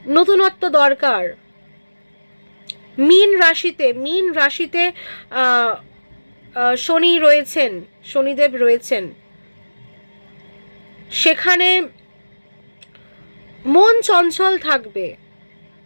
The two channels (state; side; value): inverted; both; correlation -1.00